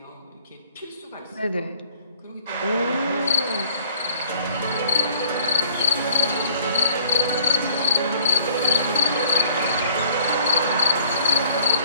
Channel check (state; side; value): inverted; both; correlation -0.56